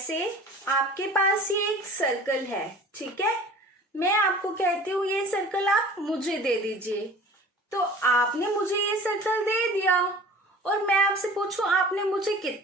आपके पास ये एक सर्कल है, ठीक है। मैं आपको कहती हूँ ये सर्कल आप मुझे दे दीजिए, तो आपने मुझे ये सर्कल दे दिया और मैं आपसे पूछूं आपने मुझे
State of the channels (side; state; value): both; normal; correlation 0.44